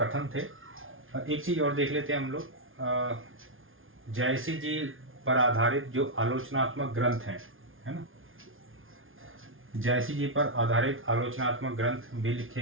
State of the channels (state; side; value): late; left; 0.59 ms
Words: थे। एक चीज़ और देख लेते हैं हम लोग। जायसी जी पर आधारित जो आलोचनात्मक ग्रंथ हैं, है ना, जायसी जी पर आधारित आलोचनात्मक ग्रंथ भी